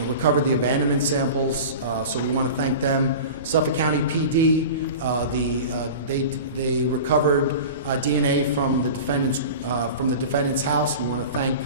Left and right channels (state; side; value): inverted; both; correlation -0.34